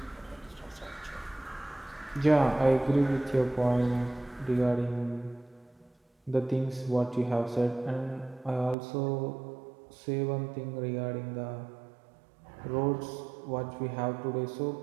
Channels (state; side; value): drops out; left; at 8.8 s